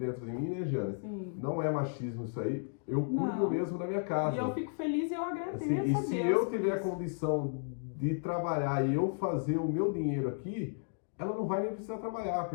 de mim, né, Jane? Sim. Não é machismo isso aí. Eu cuido mesmo da minha casa. E eu fico feliz e eu agradeço assim, a e Deus. se eu tiver a condição de trabalhar e eu fazer o meu dinheiro aqui, ela não vai nem precisar trabalhar,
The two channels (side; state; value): right; silent; digital silence